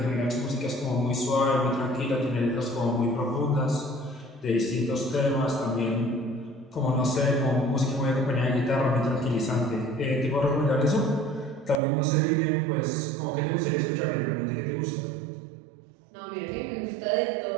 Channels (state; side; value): drops out; left; at 11.8 s